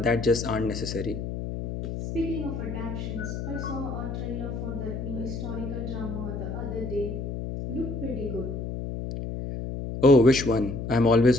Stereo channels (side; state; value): left; noise; hum, 5 dB below the sound